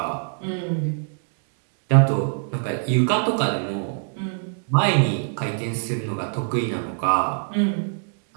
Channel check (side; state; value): left; silent; digital silence